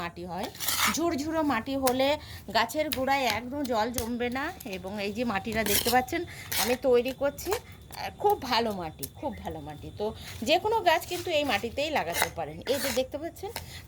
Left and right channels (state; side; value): identical; both; correlation 1.00